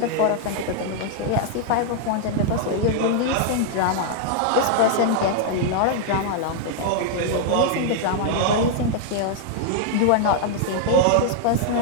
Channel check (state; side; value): different; both; correlation -0.01